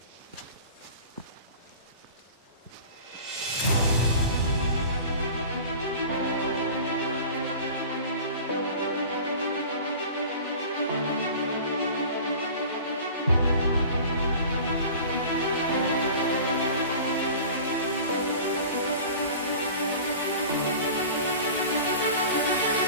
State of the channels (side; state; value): both; inverted; correlation -0.39